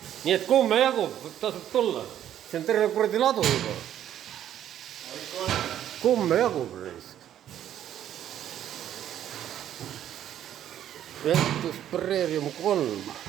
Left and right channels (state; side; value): quieter; left; 10.9 dB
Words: Nii et kumme jagub, tasub tulla. See on terve kuradi ladu juba. Kumme jagub reisk. Ventus Prerium 3.